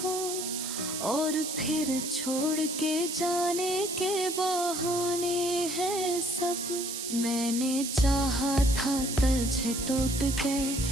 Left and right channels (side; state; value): right; noise; hiss, 5 dB below the sound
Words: और फिर छोड़ के जाने के बहाने हैं सब। मैंने चाहा था तुझे टूट के